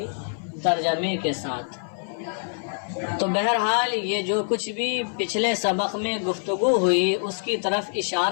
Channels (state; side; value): silent; right; 56 dB below the other